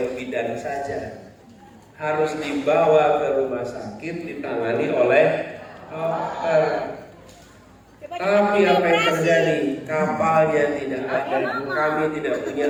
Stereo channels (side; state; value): both; identical; correlation 1.00